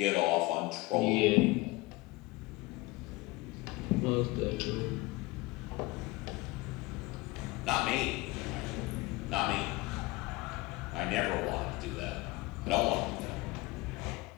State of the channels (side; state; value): right; quieter; 21.6 dB